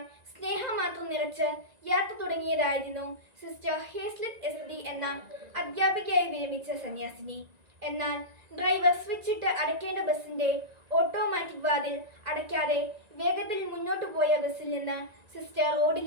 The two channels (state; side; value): late; left; 1.9 ms